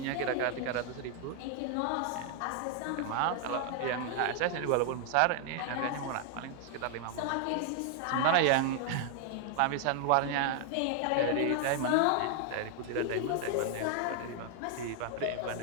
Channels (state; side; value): different; both; correlation 0.00